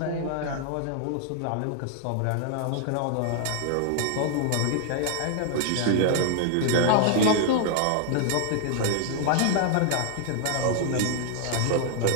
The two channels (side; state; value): both; different; correlation -0.01